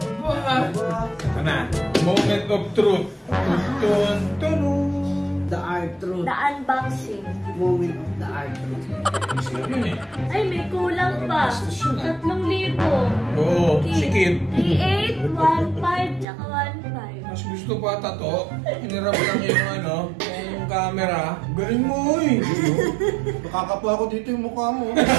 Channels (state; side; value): drops out; left; at 16.2 s